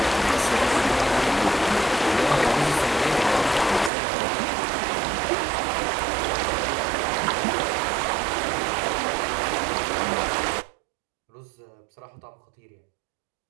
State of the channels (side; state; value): left; drops out; at 3.9 s